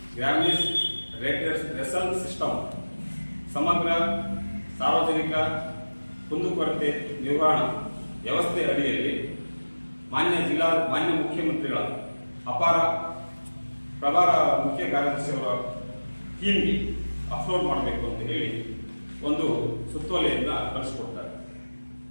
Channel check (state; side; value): inverted; both; correlation -1.00